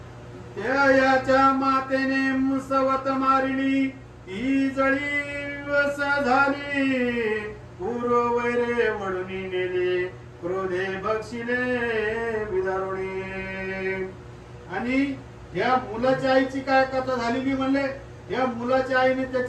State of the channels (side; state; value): both; identical; correlation 1.00